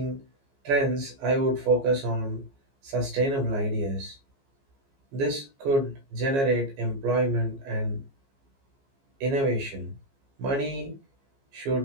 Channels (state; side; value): late; left; 15 ms